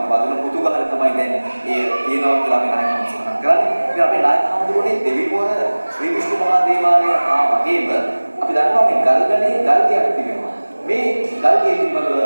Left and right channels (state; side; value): inverted; both; correlation -1.00